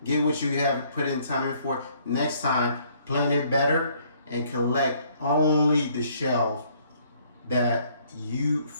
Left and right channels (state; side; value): inverted; both; correlation -0.63